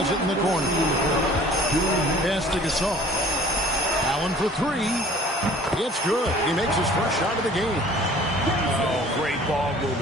it in the corner. Pass to Gasol. Allen for 3. It's good. He makes his first shot of the game. Oh, great ball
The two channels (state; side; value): normal; both; correlation 0.50